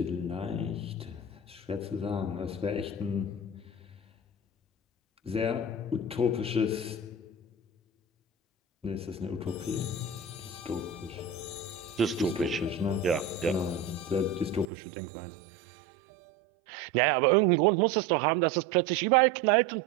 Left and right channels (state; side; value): drops out; left; at 14.7 s